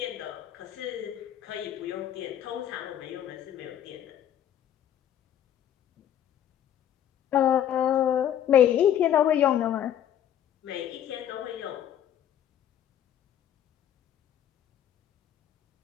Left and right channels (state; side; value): quieter; right; 10.4 dB